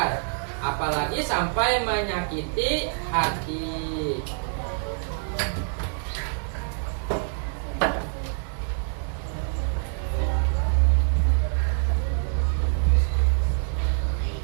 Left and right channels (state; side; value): silent; left; 61 dB below the other